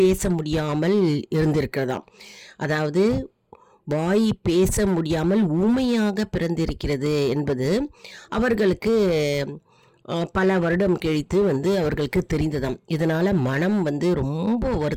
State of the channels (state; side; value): identical; both; correlation 1.00